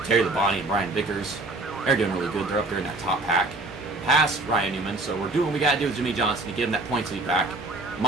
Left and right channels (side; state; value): left; quieter; 3.1 dB